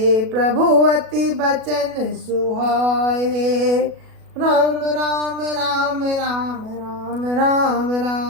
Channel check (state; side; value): late; left; 37 ms